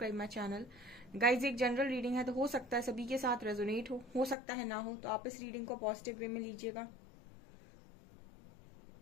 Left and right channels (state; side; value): drops out; right; at 4.4 s